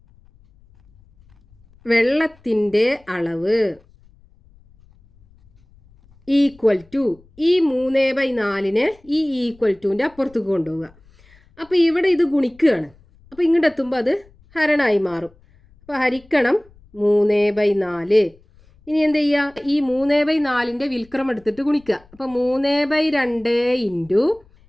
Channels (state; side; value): noise; left; rumble, 29 dB below the sound